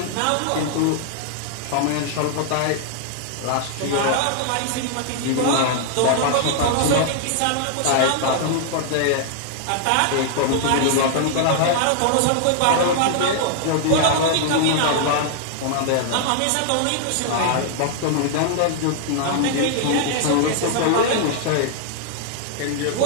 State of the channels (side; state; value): both; different; correlation -0.01